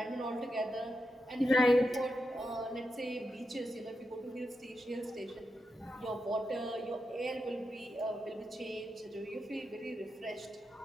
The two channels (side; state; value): both; normal; correlation 0.87